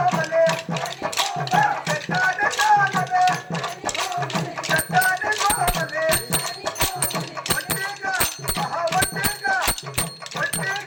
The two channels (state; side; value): identical; both; correlation 1.00